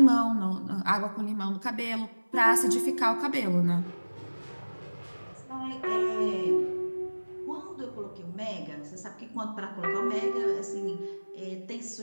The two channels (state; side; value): inverted; both; correlation -1.00